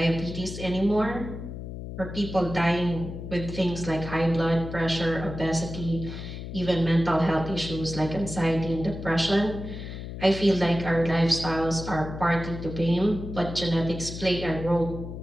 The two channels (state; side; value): noise; left; hum, 9 dB below the sound